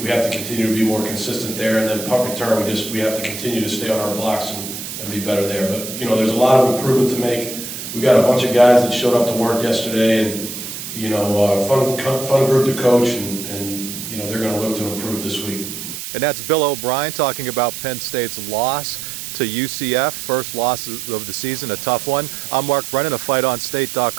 have to continue to be more consistent there. And then punt return, we have to continue to stay on our blocks and be better there. But there's a lot of improvement to make. We got a bunch of guys that showed up to work yesterday, and fun group to coach, and they're going to look to improve this week. And that's Bill O'Brien talking about Penn State's loss to UCF, first loss of the season, a tough one. I'm Mark Brennan of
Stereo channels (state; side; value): noise; right; hiss, 8 dB below the sound